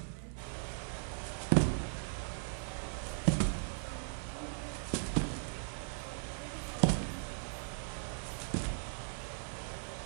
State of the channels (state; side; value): silent; left; digital silence